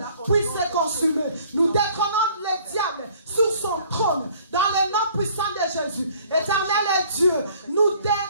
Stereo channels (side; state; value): both; inverted; correlation -0.56